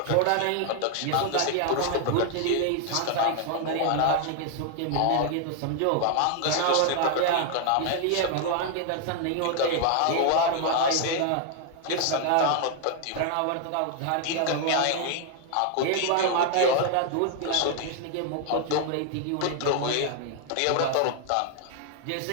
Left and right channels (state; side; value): different; both; correlation 0.00